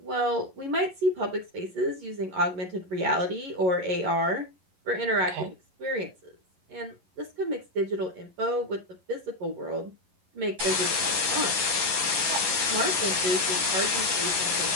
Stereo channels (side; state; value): left; late; 11 ms